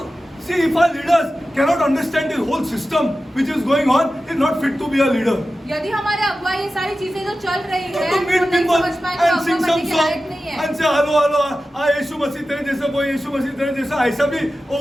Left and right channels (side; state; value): both; normal; correlation 0.94